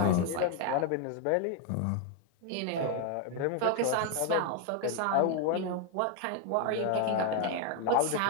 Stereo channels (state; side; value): different; both; correlation 0.01